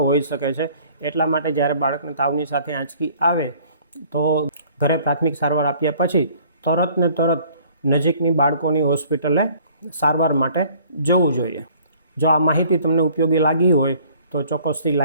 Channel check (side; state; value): both; inverted; correlation -0.55